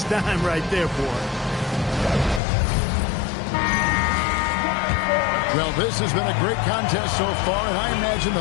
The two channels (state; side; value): drops out; right; at 2.4 s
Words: dime right there, boy. Well, this has been a great contest so far, and I imagine